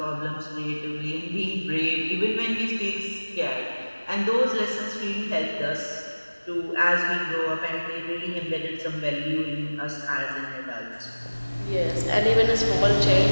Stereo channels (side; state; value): both; inverted; correlation -1.00